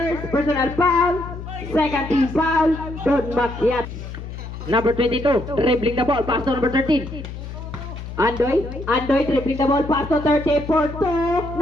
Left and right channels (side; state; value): left; noise; hum, 10 dB below the sound